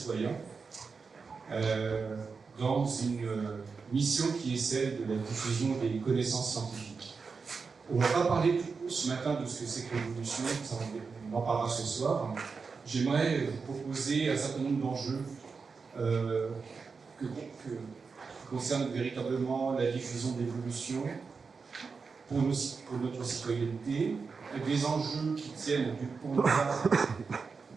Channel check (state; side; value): quieter; left; 5.0 dB